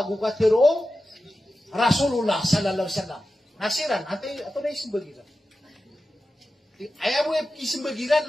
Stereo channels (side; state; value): both; normal; correlation 0.93